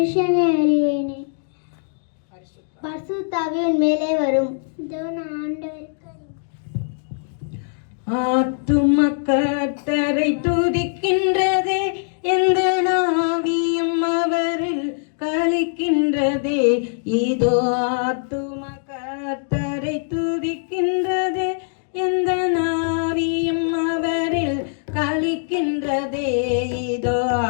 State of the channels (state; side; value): silent; right; digital silence